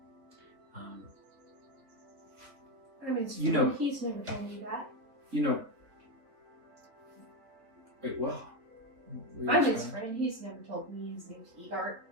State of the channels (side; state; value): left; late; 3.3 ms